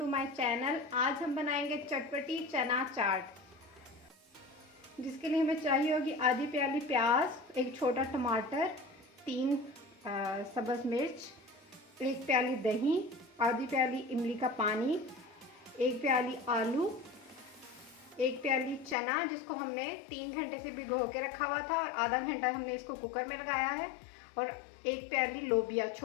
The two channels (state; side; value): drops out; right; at 18.9 s